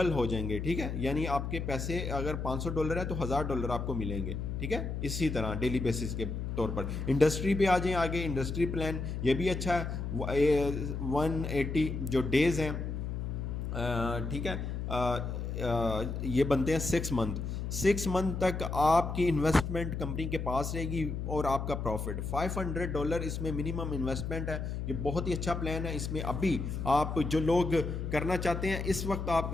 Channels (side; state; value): left; noise; hum, 4 dB below the sound